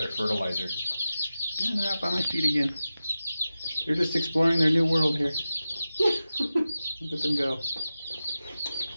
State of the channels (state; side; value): inverted; both; correlation -0.93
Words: fertilizer. And they're out by my feet again. They're just exploring their new world here. Look at them go.